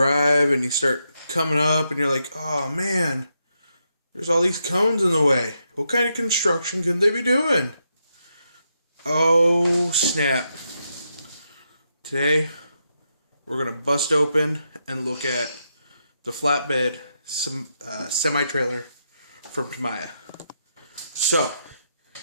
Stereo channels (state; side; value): inverted; both; correlation -0.82